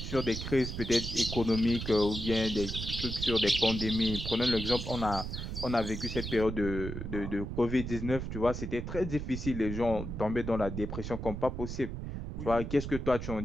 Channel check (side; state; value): right; noise; rumble, 6 dB below the sound